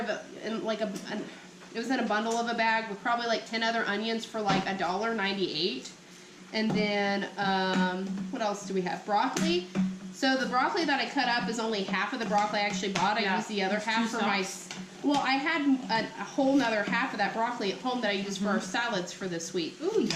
it in like it was in a bundle of a bag with probably like 10 other onions for like $1.98. And then, what else do we have? Broccoli. So the broccoli that I cut up is only half of the broccoli I actually bought. I used the other half for my, well, I had a whole nother half of that broccoli at home that I used for our salads for this week. Ooh, yum.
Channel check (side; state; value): both; identical; correlation 1.00